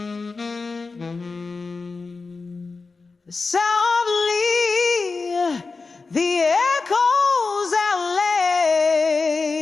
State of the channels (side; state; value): right; quieter; 4.2 dB